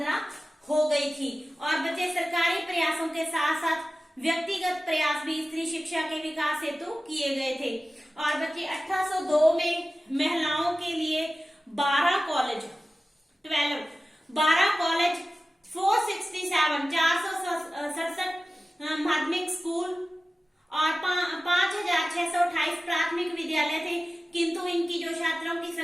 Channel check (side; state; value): both; normal; correlation 0.96